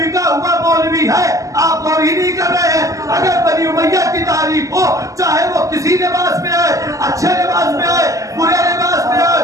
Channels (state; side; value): late; left; 0.16 ms